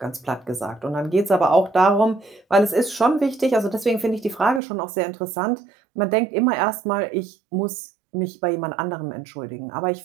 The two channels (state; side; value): drops out; left; at 4.6 s